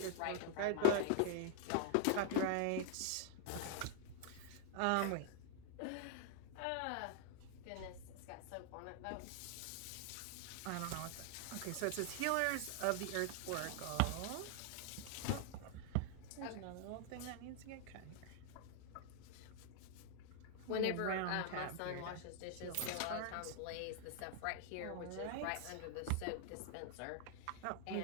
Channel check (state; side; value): different; both; correlation 0.00